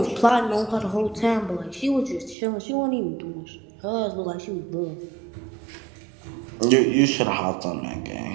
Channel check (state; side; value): drops out; left; at 2.4 s